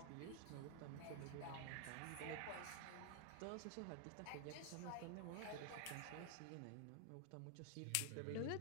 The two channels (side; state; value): both; different; correlation 0.00